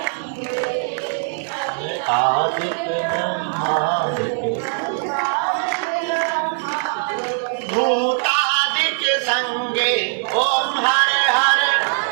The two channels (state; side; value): silent; left; 63 dB below the other